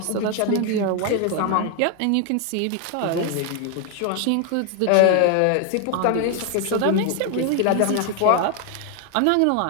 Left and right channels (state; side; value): different; both; correlation 0.00